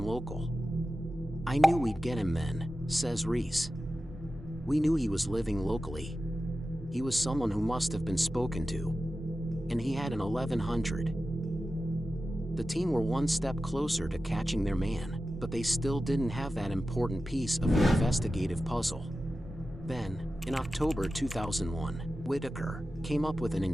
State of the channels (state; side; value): normal; both; correlation 0.93